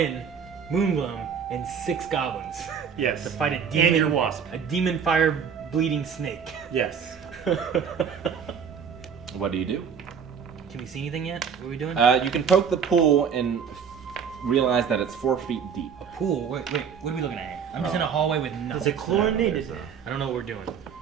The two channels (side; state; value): left; quieter; 7.1 dB